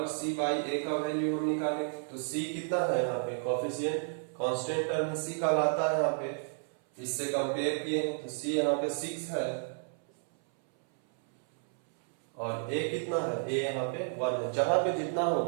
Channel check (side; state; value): left; silent; 57 dB below the other